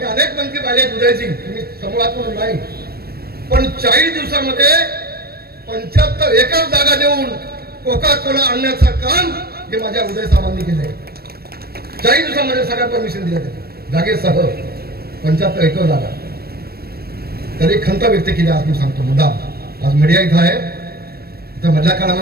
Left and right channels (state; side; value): late; left; 0.45 ms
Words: अनेक मंत्री पाहिले उदयजी, तुम्ही समूहातून नाही, पण 40 दिवसामध्ये 75 एकर जागा देऊन कोका कोला आणण्याचं काम हे माझ्या उदय साहेबांनी केलंय. 40 दिवसामध्ये सगळ्या परमिशन दिल्या जागेसह 75 एकर जागा. तरी खंत व्यक्त केली आज मी सांगतो मुद्दाम. आज मीडिया इथं आहे, तर मधल्या